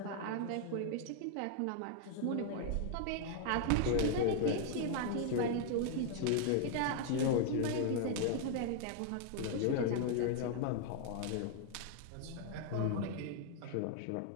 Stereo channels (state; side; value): different; both; correlation 0.00